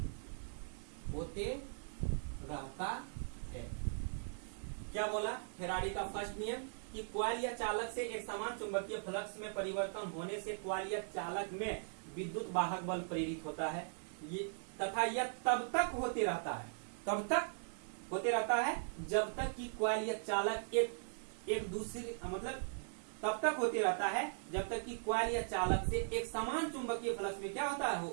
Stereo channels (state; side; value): silent; left; 51 dB below the other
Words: क्या बोला? फैराडे का फर्स्ट नियम कि कॉइल कॉइल या चालक से एक समान चुंबकीय फ्लक्स में परिवर्तन होने से कॉइल या चालक में विद्युत वाहक बल प्रेरित होता है। ये तथा यह तब तक होते रहता है, तब तक होते रहता है जब तक कि कॉइल या चालक एक दूसरे मतलब तब तक होते रहता है जब तक कि कॉइल या चालक से एक समान चुंबकीय फ्लक्स में क्या होता है,